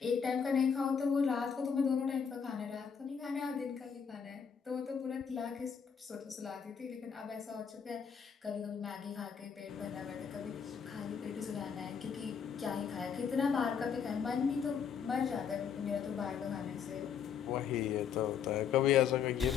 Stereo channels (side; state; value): right; quieter; 7.1 dB